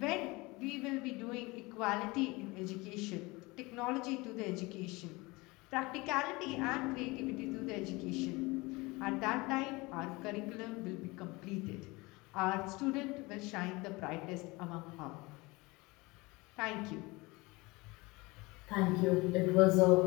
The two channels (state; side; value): quieter; right; 23.7 dB